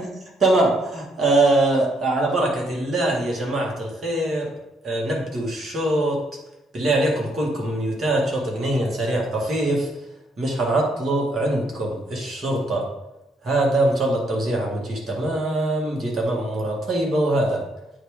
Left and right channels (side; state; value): both; normal; correlation 0.72